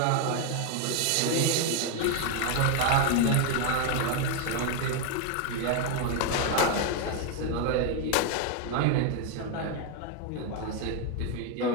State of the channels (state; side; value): different; both; correlation 0.01